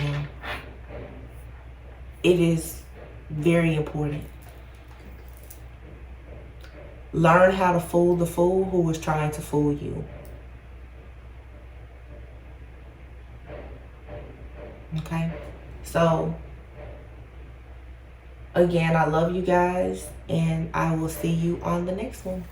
It is very important. Learn how to fool the fool who is trying to fool you. Okay? So, again, I love you guys, and I will see you on the next one.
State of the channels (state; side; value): identical; both; correlation 1.00